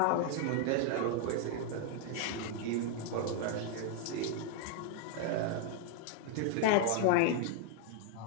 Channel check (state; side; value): different; both; correlation 0.00